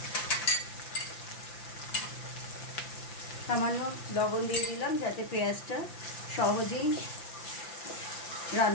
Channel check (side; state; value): right; late; 5.8 ms